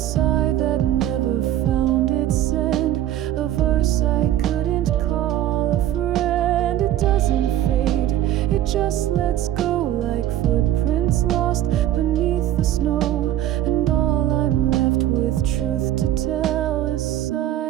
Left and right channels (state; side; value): quieter; left; 12.5 dB